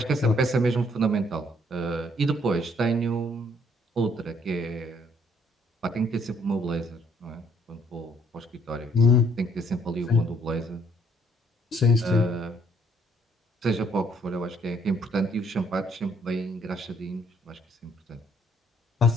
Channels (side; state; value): both; normal; correlation 0.66